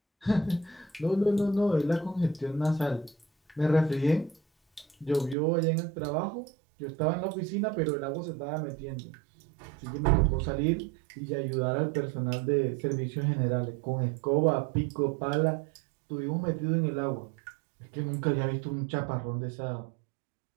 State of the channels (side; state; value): left; drops out; at 5.4 s